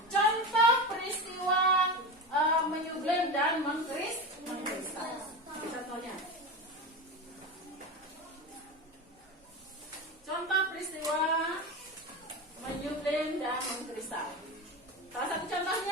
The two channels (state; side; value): normal; both; correlation 0.23